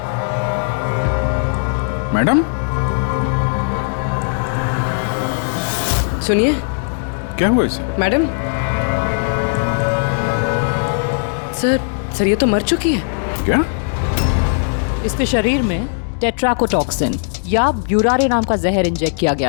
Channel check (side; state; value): right; silent; digital silence